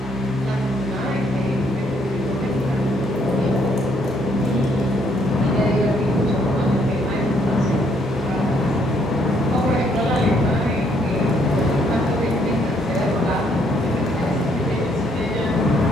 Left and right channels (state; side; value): normal; both; correlation 0.69